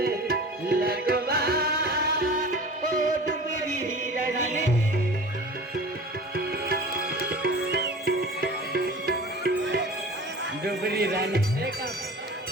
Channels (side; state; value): both; normal; correlation 0.38